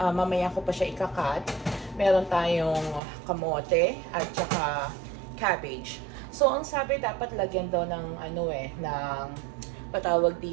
mamaya ko pa siya ikakat. Meron tayong kamote at saka cabbage. So ang sabi dapat lagyan daw ng ng patawag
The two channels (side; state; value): left; drops out; at 3.0 s